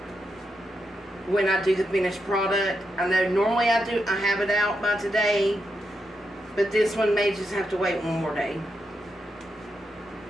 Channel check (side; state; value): both; normal; correlation 0.84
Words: when I do the finished product. I know normally I have it out by today. But this one may just have to wait one more day.